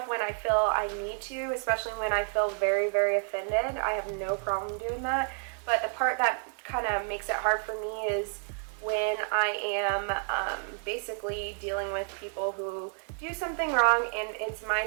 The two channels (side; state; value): left; quieter; 39.1 dB